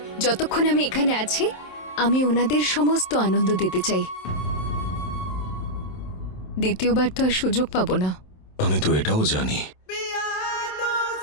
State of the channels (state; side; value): late; right; 27 ms